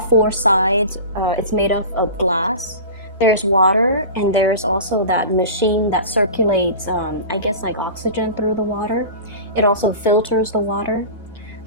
sides, it's made of glass. There's water, and there's also that machine that circulates, I guess, like oxygen through the water. It also filters the water.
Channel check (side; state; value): both; inverted; correlation -0.34